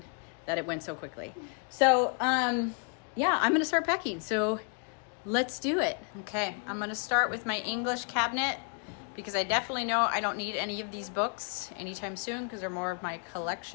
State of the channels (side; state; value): right; quieter; 39.7 dB